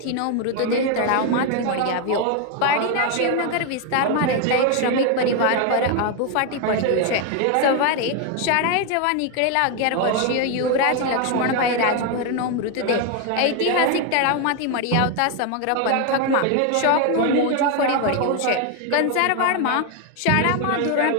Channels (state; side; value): different; both; correlation 0.01